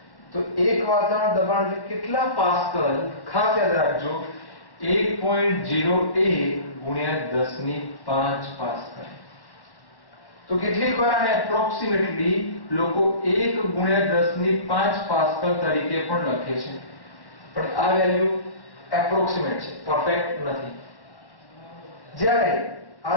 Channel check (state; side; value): late; right; 1.1 ms